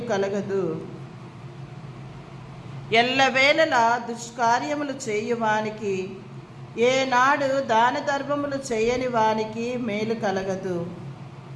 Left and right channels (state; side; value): identical; both; correlation 1.00